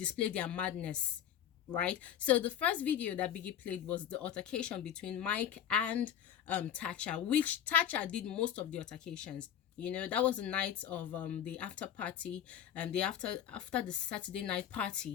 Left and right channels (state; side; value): quieter; right; 9.9 dB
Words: their madness. Right. So the first video that Biggie played was the altercation between Mike and TACHA, which TACHA did most of the altercations. That was the night of the after party, and the after the Saturday night